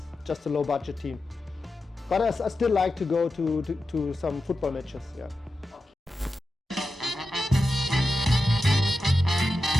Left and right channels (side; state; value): both; normal; correlation 0.91